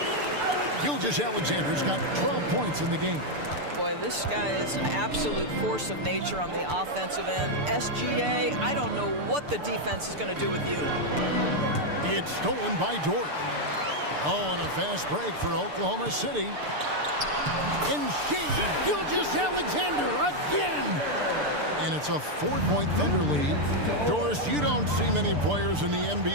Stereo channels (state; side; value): late; left; 6.8 ms